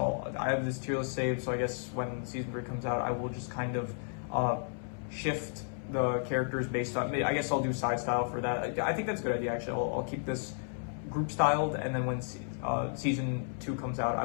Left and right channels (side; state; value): right; silent; 56 dB below the other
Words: have this tier list saved. So I guess when season 3 comes out, I will just kind of shift the characters based on, I guess I'll do side style for that. I think that's a good idea, actually. I'll keep this group styled, and then when season 2 comes out, I